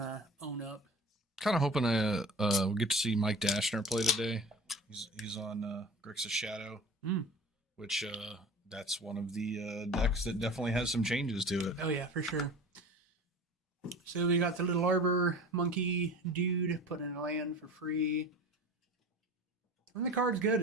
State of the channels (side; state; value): both; normal; correlation 0.39